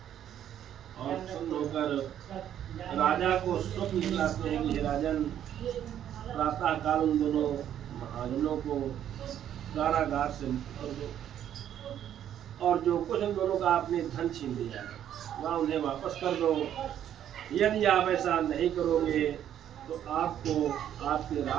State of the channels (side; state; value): left; quieter; 10.4 dB